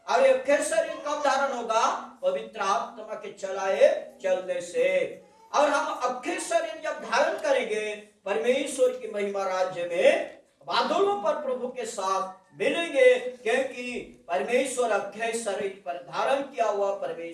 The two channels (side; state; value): both; identical; correlation 1.00